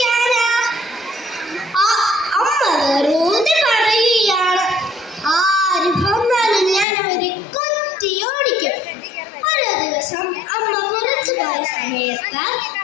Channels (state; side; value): drops out; right; at 6.9 s